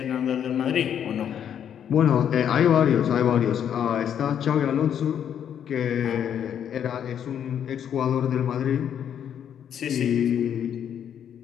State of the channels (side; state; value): right; quieter; 9.0 dB